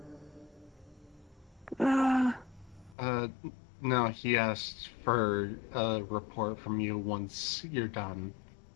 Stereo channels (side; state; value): right; drops out; at 3.0 s